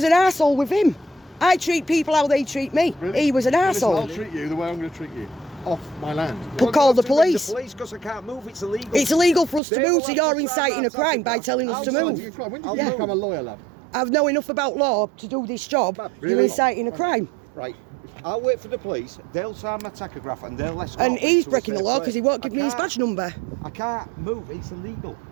an arsehole with him. I treat people how they treat me. Really? He was an Listen, I'll arsehole. treat you the way I'm going to treat you. Off my land. But call the police. The police, because I can't move. It's illegal. It's illegal for us to They move, will so have you're to inciting sign a that crime by document. telling us to I'll move. sign When did you become a lawyer, lad? I know enough about law to do this job. Really? You're inciting a crime. Right. I'll wait for the police. They'll sign my tachograph and they'll escort And me he's to a breaking the safe law because he place. won't give me his badge number. I can't move. It's illegal.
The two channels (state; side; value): drops out; left; at 9.6 s